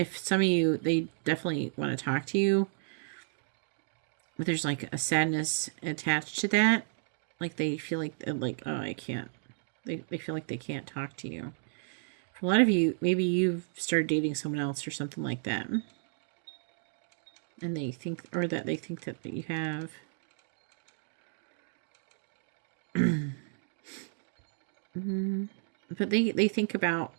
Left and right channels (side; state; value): left; silent; digital silence